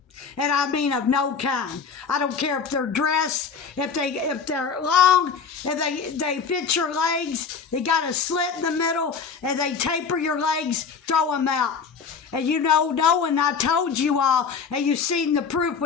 And I mean of no kind. I don't care if they're dress, if they're long, if they fit your legs, they got a slit in the middle, and they taper your legs, throw them out. And you know, knowing I told you all, and you've seen the proof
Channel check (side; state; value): right; quieter; 5.9 dB